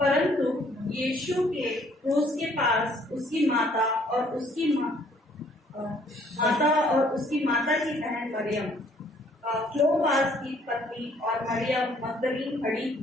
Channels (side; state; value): both; normal; correlation 0.62